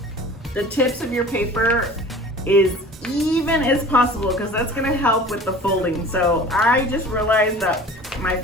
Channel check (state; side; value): normal; both; correlation 0.43